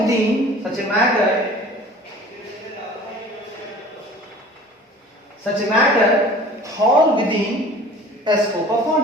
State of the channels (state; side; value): normal; both; correlation 0.45